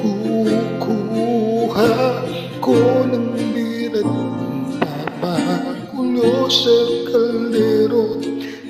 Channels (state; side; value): identical; both; correlation 1.00